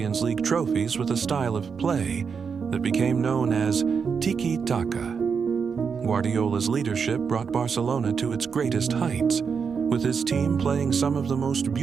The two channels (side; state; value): left; quieter; 6.0 dB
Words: League trophies with a style of play that became known as tiki-taka. Guardiola's leadership brought Barcelona to its greatest heights, with his team playing some of the most